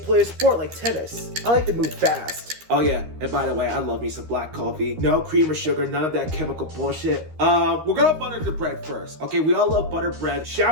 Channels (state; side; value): late; left; 13 ms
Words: a sport like tennis. I like to move fast. Oh yeah, and by the way, I love me some black coffee. No cream or sugar, none of that chemical bullshit. We're gonna butter the bread first. Okay, we all love butter bread.